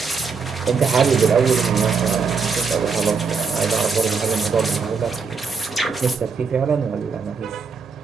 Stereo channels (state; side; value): quieter; left; 5.2 dB